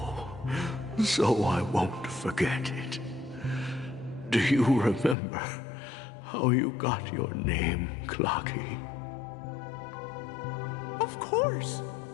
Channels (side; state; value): right; drops out; at 5.2 s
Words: so I won't forget it. Do you remember how you got your name, Clocky? Of course!